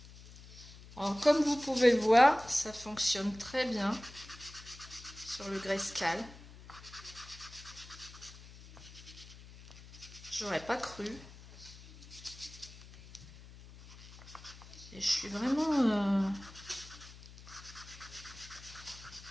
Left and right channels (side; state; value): left; noise; hum, 18 dB below the sound